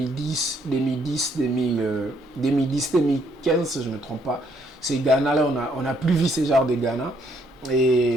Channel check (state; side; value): normal; both; correlation 0.69